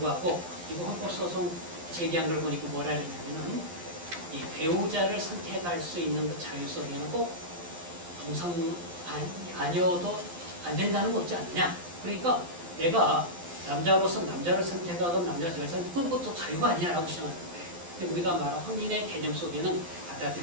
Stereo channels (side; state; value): left; late; 11 ms